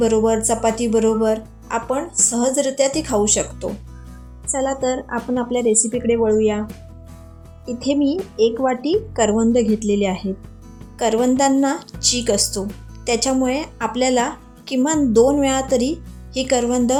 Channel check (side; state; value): both; identical; correlation 1.00